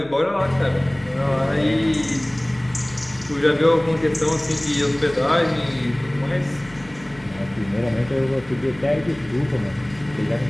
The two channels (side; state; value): left; noise; hum, 21 dB below the sound